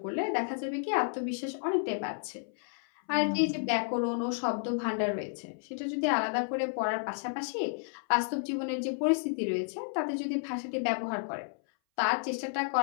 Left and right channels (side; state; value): right; silent; 57 dB below the other